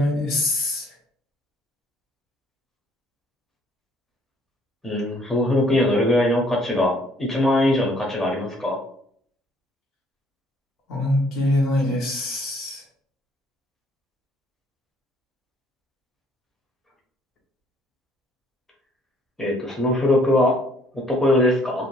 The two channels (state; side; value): normal; both; correlation 0.63